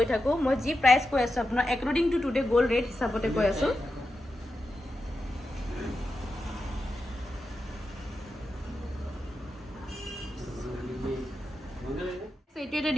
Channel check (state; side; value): normal; both; correlation 0.89